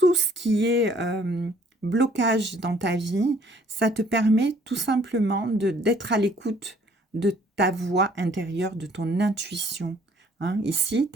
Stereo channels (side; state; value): both; normal; correlation 0.60